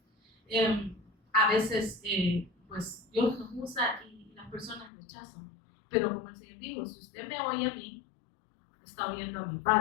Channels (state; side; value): drops out; right; at 4.9 s